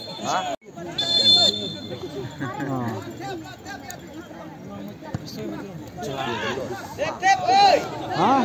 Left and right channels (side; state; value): both; identical; correlation 1.00